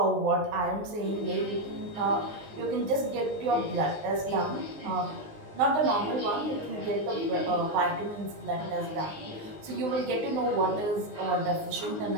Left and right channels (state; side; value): late; left; 19 ms